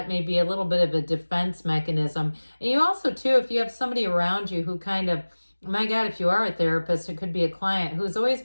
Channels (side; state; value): both; inverted; correlation -1.00